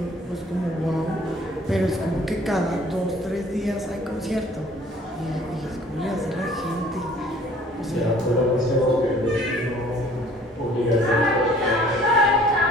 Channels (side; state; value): both; normal; correlation 0.54